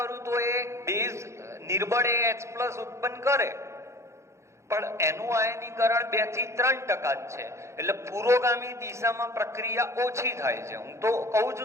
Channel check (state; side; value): late; left; 0.14 ms